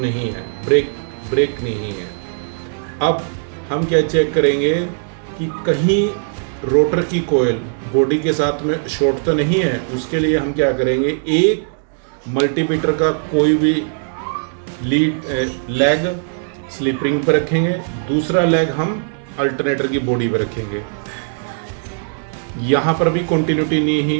है, ब्रेक नहीं है। अब हम क्या चेक करेंगे कि कहीं रोटर की कोयल बॉडी के साथ में शॉर्ट तो नहीं है। उसके लिए हम क्या करेंगे, एक मल्टीमीटर का कोई भी लेग स्लिप रिंग पर रखेंगे, दूसरा लेग हम अल्टरनेटर की बॉडी पर रखेंगे। यहाँ पर भी कॉन्टिन्यूटी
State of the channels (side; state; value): left; silent; digital silence